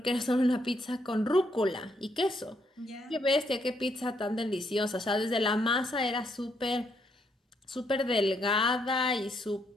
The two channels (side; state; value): both; normal; correlation 0.74